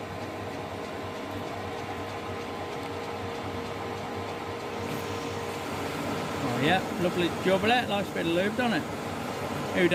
Oh yeah, lovely jubbler, likes a bit of lube, doesn't it? Who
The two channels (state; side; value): identical; both; correlation 1.00